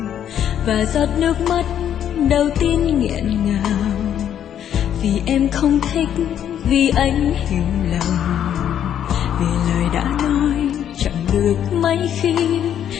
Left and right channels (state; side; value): quieter; right; 9.8 dB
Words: Và giọt nước mắt đầu tiên nghẹn ngào, vì em không thích, vì anh hiểu lầm, vì lời đã nói chẳng được mấy khi